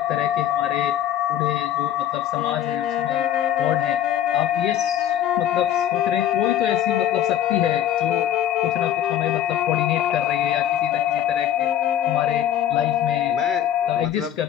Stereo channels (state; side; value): quieter; right; 11.1 dB